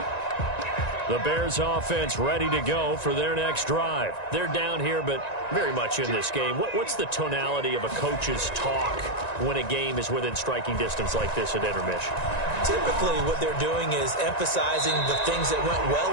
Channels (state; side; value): late; right; 1.9 ms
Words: The Bears offense ready to go for their next drive. They're down here, but very much in this game. What's the tonality of a coach's talk when a game is within striking distance like this at intermission? Typically, what they're doing is emphasizing the things that went